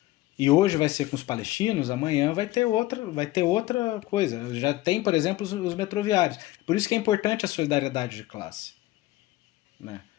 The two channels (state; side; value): quieter; right; 17.0 dB